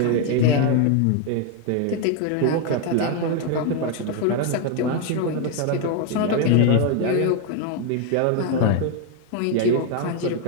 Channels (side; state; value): both; different; correlation 0.01